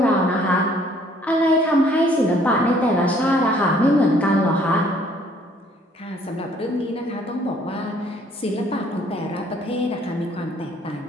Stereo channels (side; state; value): both; normal; correlation 0.61